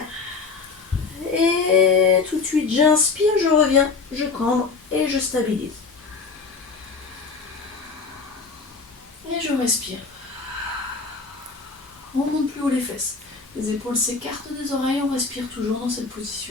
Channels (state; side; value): quieter; right; 4.7 dB